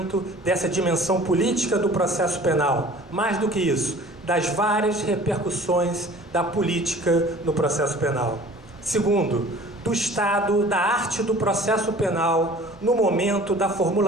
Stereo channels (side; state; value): both; normal; correlation 0.47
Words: dessa dimensão política do processo penal. Mais do que isso, das várias repercussões da política no processo penal. Segundo, do estado da arte do processo penal no momento da